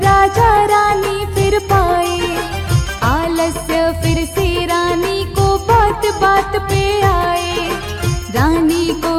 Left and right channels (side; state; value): both; identical; correlation 1.00